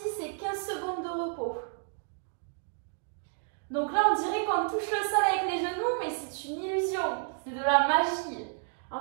et 15 secondes de repos. Donc là, on dirait qu'on touche le sol avec les genoux, mais c'est une illusion. C'est de la magie.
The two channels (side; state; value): left; silent; 57 dB below the other